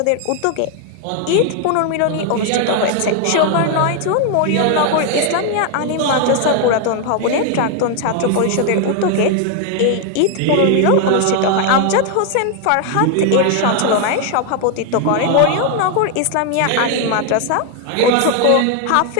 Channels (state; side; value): different; both; correlation 0.00